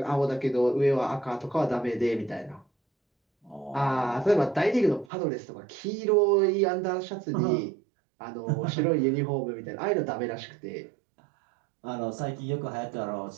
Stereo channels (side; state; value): left; drops out; at 5.1 s